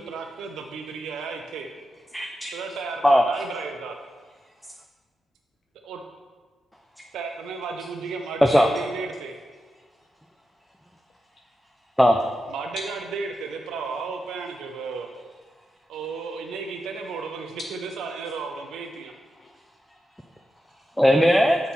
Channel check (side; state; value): both; normal; correlation 0.90